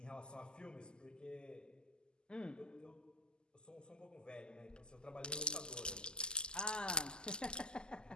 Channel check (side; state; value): right; late; 0.046 ms